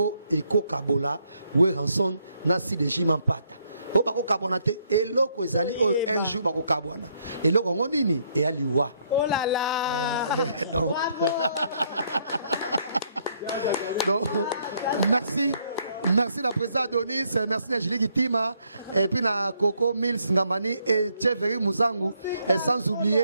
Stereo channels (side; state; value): both; inverted; correlation -0.71